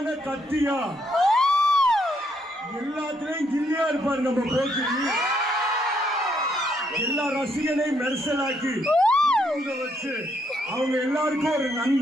கத்தியா, எல்லாத்திலையும் கில்லியா இருப்பாரு நம்ம போக்கி. எல்லா ரசிகனையும் மெர்சலாக்கி வச்சு அவங்க எல்லாருக்கும் ஒரு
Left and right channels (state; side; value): normal; both; correlation 0.73